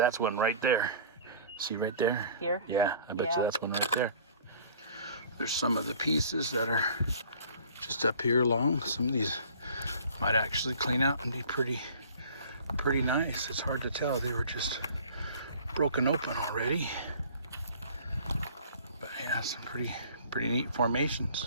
one right there. See right there? Here? Yeah, I bet you that's one right there. There's some of the pieces that are just up here along. Some of these might actually clean out and be pretty nice. It's hard to tell. They were just broken open already. But yeah, some pretty neat formations.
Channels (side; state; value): both; inverted; correlation -0.48